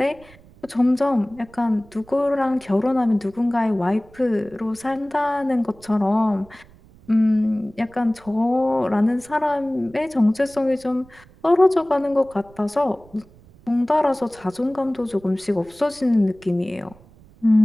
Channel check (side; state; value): right; noise; rumble, 25 dB below the sound